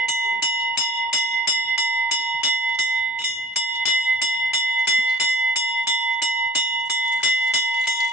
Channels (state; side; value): normal; both; correlation 0.48